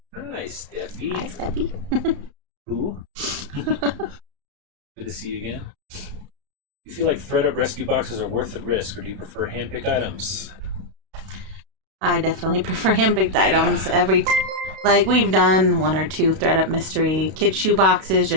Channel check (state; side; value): late; left; 32 ms